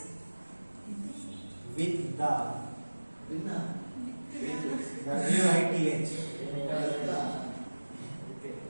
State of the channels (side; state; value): both; inverted; correlation -1.00